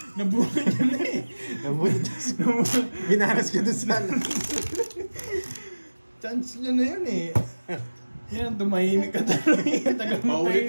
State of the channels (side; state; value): both; inverted; correlation -1.00